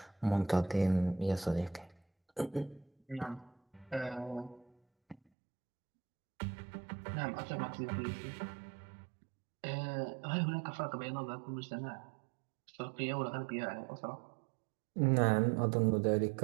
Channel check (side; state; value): left; drops out; at 5.2 s